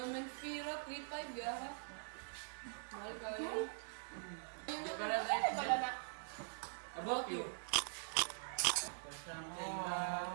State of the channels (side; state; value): left; silent; digital silence